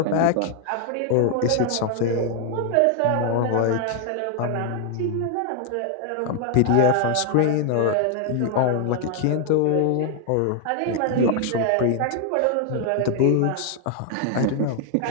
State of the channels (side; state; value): both; different; correlation 0.00